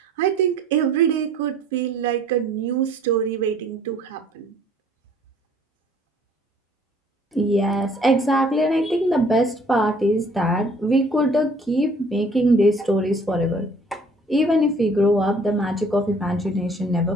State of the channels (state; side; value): normal; both; correlation 0.56